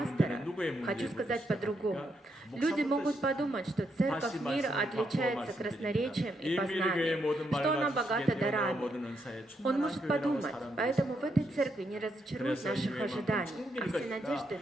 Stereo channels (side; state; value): both; normal; correlation 0.79